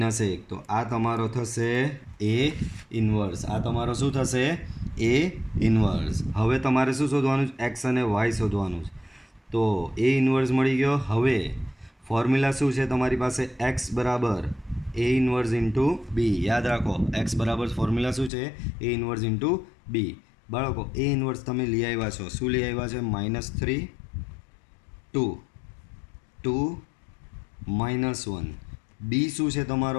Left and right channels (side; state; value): right; drops out; at 18.3 s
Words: તો આ તમારો થશે એ ઇન્વર્સ. આ તમારો શું થશે? એ ઇન્વર્સ. હવે તમારે શું શોધવાનું છે? એક્સ અને વાય શોધવાનું છે. તો એ ઇન્વર્સ મળી ગયો. હવે ફોર્મ્યુલા શું છે તમારી પાસે? એક્સ બરાબર એ ઇન્વર્સ ઇન્ટુ બી. યાદ રાખો એક્સ બરાબર ફોર્મ્યુલા શું છે? એ ઇન્વર્સ ઇન્ટુ બી. બાળકો એ ઇન્વર્સ તમે લઈ આવ્યા છો. શું લઈ આવ્યા છે? -3 2 2 -1. બી શું છે